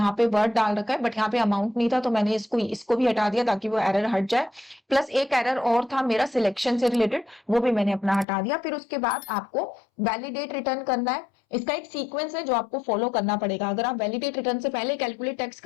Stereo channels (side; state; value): right; drops out; at 8.2 s